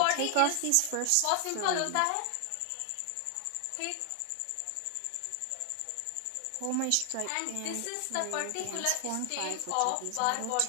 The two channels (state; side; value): different; both; correlation 0.00